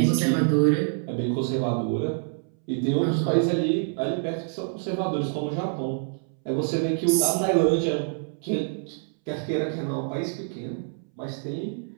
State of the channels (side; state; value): left; silent; 61 dB below the other